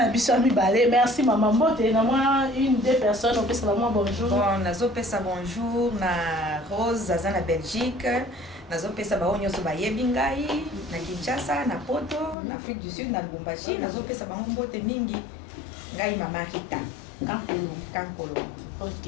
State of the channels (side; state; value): right; drops out; at 12.4 s